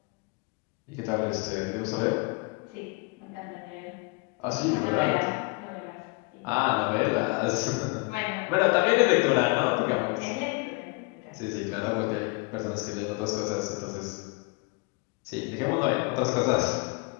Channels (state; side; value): quieter; right; 29.8 dB